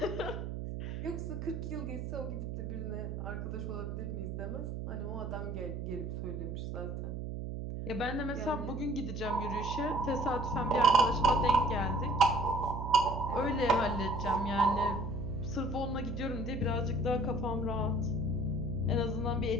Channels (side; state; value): right; noise; hum, 5 dB below the sound